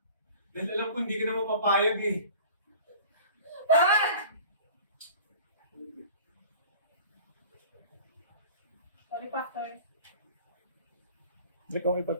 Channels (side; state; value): both; inverted; correlation -0.43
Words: Dahil alam ko hindi ka na mapapayag eh. Bakit? Sorry, Pastor. Hindi ko